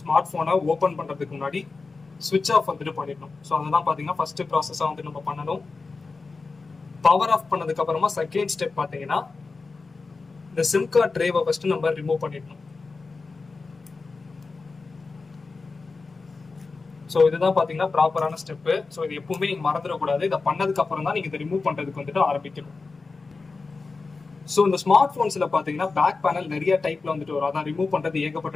ஃபோனை ஓப்பன் பண்ணுறதுக்கு முன்னாடி சுவிட்ச் ஆஃப் வந்துட்டு பண்ணிடணும். ஸோ அதுதான் பார்த்தீங்கன்னா ஃபர்ஸ்ட் ப்ராசஸாக வந்து நம்ம பண்ணணும். பவர் ஆஃப் பண்ணதுக்கு அப்புறமா செகண்ட் ஸ்டெப் பார்த்தீங்கன்னா இந்த சிம் கார்டு ட்ரேவை ஃபர்ஸ்ட் நம்ம ரிமூவ் பண்ணிடணும். ஸோ இதுதான் பார்த்தீங்கன்னா ப்ராப்பரான ஸ்டெப்பு. ஸோ இது எப்பவுமே நீங்கள் மறந்துடக்கூடாது. இதை பண்ணதுக்கு அப்புறம் தான் நீங்கள் இதை ரிமூவ் பண்ணுறதுக்கு வந்துட்டு ஆரம்பிக்கணும். ஸோ இந்த ஸ்மார்ட் ஃபோன்ஸில் பார்த்தீங்கன்னா பேக் பேனல் நிறைய டைப்ல வந்துட்டு வரும். அதான் ரிமூவ் பண்ணுறது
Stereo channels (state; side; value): quieter; right; 4.1 dB